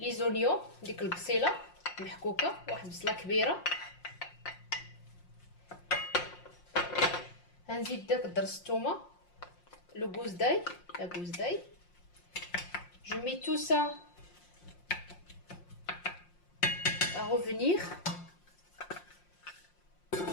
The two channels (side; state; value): right; late; 5.6 ms